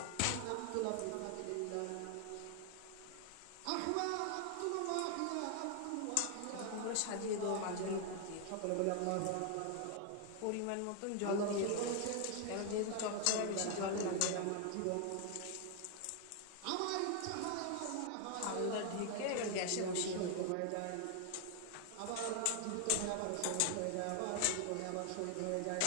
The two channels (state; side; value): different; both; correlation 0.00